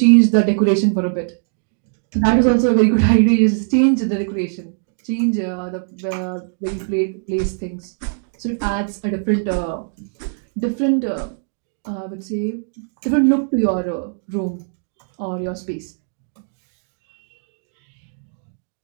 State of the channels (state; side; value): silent; left; digital silence